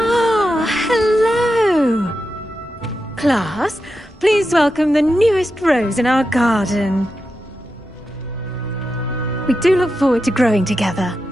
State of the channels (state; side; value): normal; both; correlation 0.89